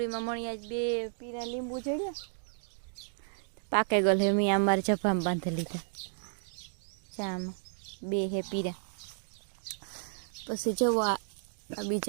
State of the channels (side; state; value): left; silent; digital silence